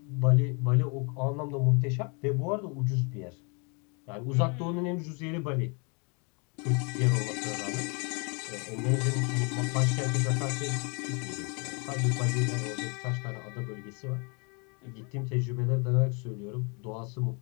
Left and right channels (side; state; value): right; quieter; 34.1 dB